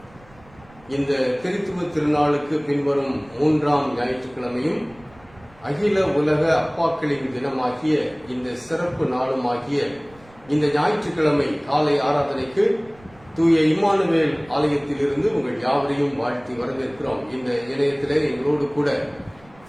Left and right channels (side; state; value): right; noise; rumble, 26 dB below the sound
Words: இந்த திருத்துவ திருநாளுக்கு பின்வரும் 3ஆம் ஞாயிற்றுக்கிழமையும் அகில உலக அப்பாக்களின் தினமாகிய இந்த சிறப்பு நாளுமாகிய இந்த ஞாயிற்றுக்கிழமை காலை ஆராதனைக்கு தூய இம்மானுவேல் ஆலயத்திலிருந்து உங்கள் யாவரையும் வாழ்த்தி வரவேற்கிறோம். இந்த இணையத்திலே எங்களோடு கூட